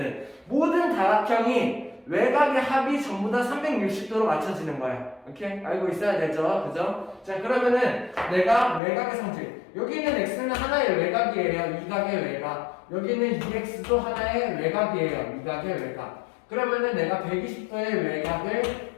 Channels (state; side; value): drops out; right; at 8.8 s